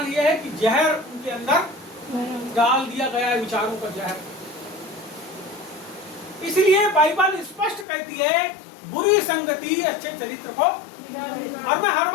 यह है कि जहर उनके अंदर डाल दिया गया है, विचारों का जहर। इसलिए बाइबल स्पष्ट कहती है बुरी संगति अच्छे चरित्र को, और मैं हर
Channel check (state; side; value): drops out; right; at 7.9 s